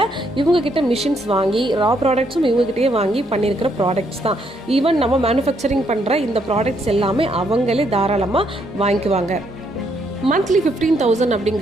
இவங்க கிட்ட மிஷின்ஸ் வாங்கி ரா ப்ராடக்ட்ஸும் இவங்க கிட்டே வாங்கி பண்ணியிருக்கிற ப்ராடக்ட்ஸ் தான். ஈவன் நம்ம மேனுஃபேக்சரிங் பண்ற இந்த ப்ராடக்ட்ஸ் எல்லாமே அவங்களே தாராளமா வாங்கிக்குவாங்க. மந்த்லி 15,000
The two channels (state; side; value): normal; both; correlation 0.73